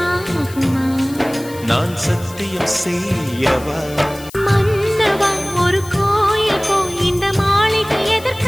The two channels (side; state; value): left; noise; hiss, 18 dB below the sound